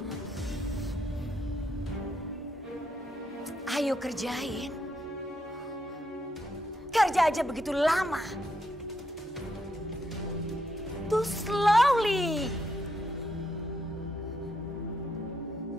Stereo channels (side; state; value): both; normal; correlation 0.78